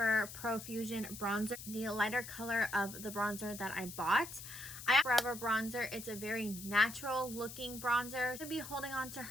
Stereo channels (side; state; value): left; noise; hiss, 11 dB below the sound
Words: Pro Fusion bronzer, the lighter color of the bronzer that I bought. I have Forever bronzer. It's a very natural looking bronzer. I'm gonna be holding on to